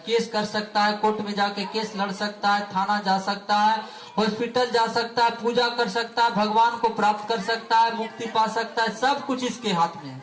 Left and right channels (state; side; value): identical; both; correlation 1.00